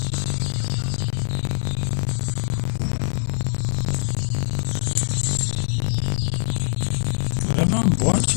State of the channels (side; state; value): right; silent; 63 dB below the other